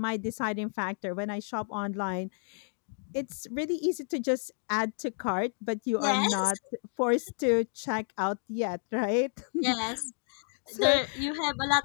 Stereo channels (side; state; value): right; silent; 57 dB below the other